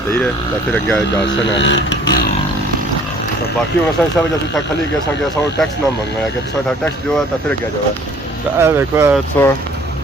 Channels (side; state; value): both; normal; correlation 0.54